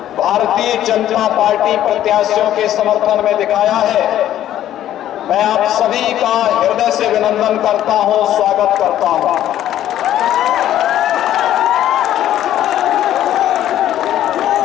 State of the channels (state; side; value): quieter; right; 12.1 dB